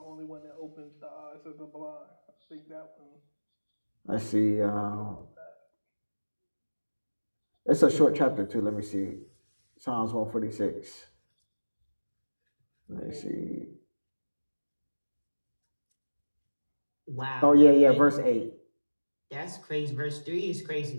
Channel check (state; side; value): inverted; both; correlation -1.00